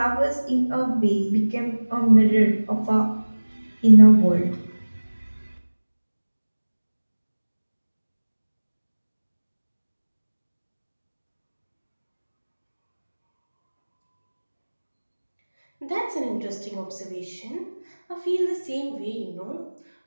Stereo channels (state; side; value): inverted; both; correlation -1.00